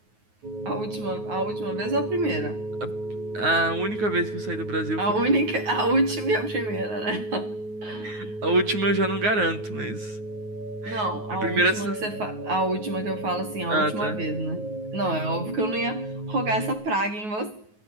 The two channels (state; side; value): late; left; 9.4 ms